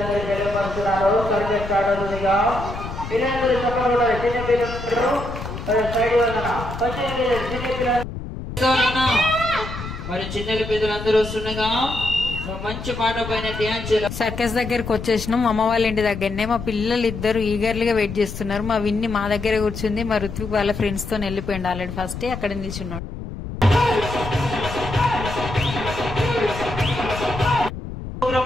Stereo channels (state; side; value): noise; left; rumble, 8 dB below the sound